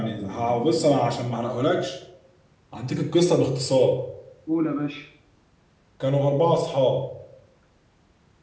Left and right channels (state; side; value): identical; both; correlation 1.00